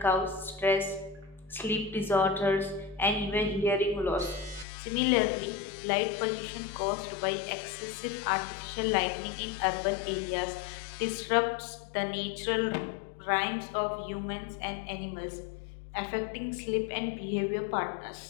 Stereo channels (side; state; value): right; drops out; at 4.7 s